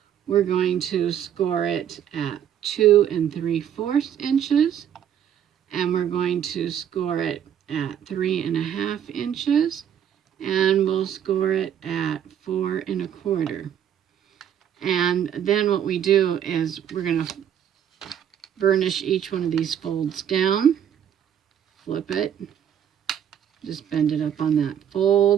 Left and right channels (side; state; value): left; quieter; 9.5 dB